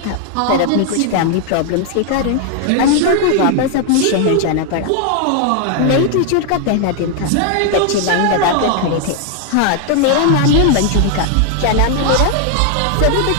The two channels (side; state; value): both; different; correlation 0.00